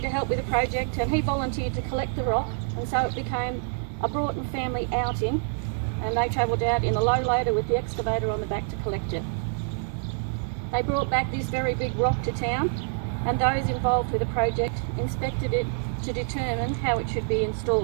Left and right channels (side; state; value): left; silent; 60 dB below the other